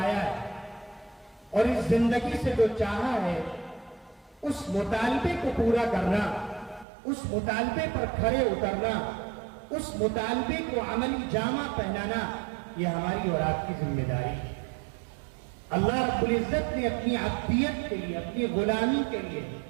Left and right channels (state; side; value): drops out; left; at 6.9 s